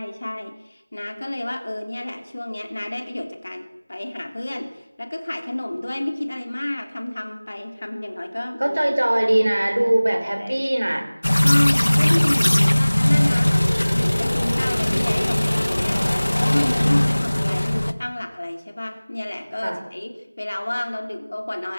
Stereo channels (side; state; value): both; inverted; correlation -1.00